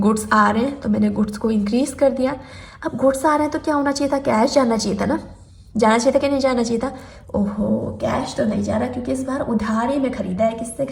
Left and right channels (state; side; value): identical; both; correlation 1.00